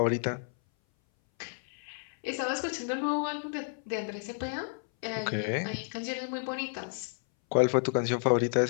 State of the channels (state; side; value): silent; right; 57 dB below the other